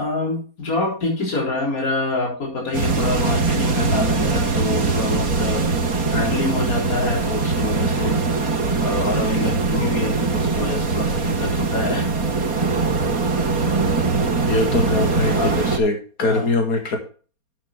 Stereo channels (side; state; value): right; late; 4.3 ms